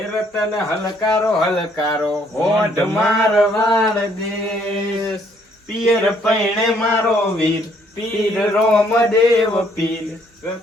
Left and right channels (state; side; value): normal; both; correlation 0.66